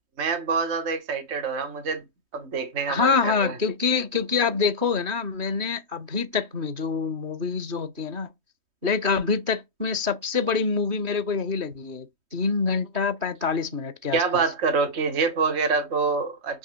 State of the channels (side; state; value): left; late; 3.2 ms